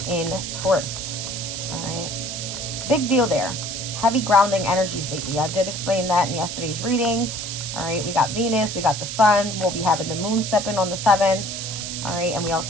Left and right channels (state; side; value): noise; right; hiss, 6 dB below the sound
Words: in Taurus. All right, big deal there. Heavy grounding energies lately. I did explain that in yesterday's reading. All right, we got Venus, we got the sun. We'll be having the moon step in on the 7th. All right, and we